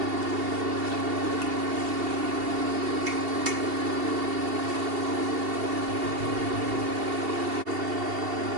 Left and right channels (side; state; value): left; late; 2.7 ms